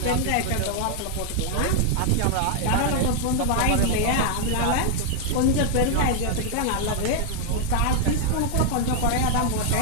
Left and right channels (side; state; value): both; different; correlation 0.00